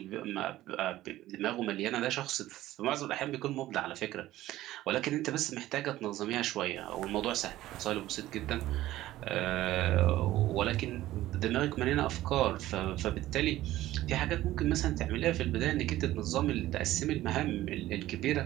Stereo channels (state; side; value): quieter; left; 15.3 dB